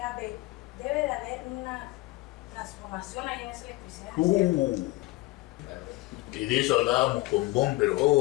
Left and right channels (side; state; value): right; quieter; 20.5 dB